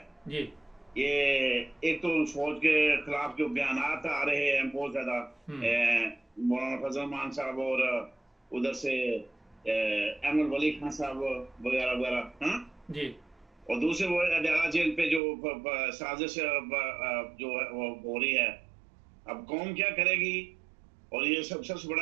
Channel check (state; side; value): drops out; left; at 15.2 s